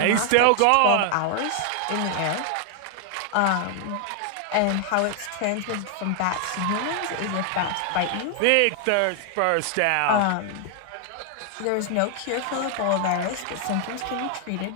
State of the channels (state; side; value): different; both; correlation 0.00